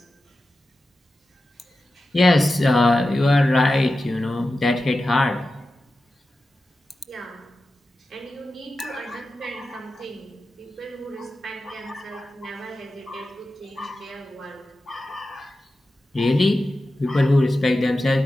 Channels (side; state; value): both; normal; correlation 0.93